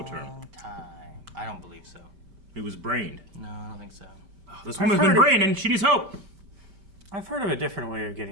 term. I don't believe so. He was brained. No, I don't think so. Oh, this woman's been brained and she needs help. I've heard of a different way of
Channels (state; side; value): late; left; 5.1 ms